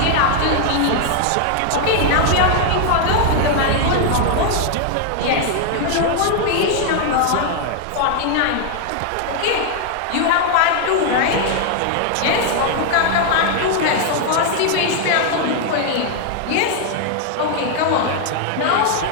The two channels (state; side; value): different; both; correlation 0.00